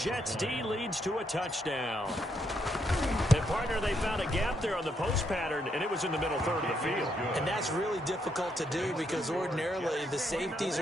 D leads to a touchdown. And, partner, they found a gap there on the post pattern, and it was in the middle third of the field. And that's really difficult to do because ordinarily the safeties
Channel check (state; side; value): normal; both; correlation 0.76